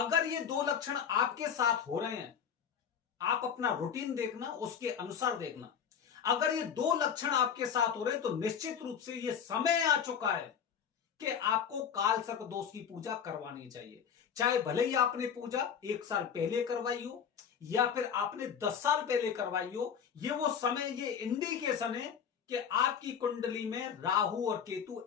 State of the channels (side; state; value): right; quieter; 7.7 dB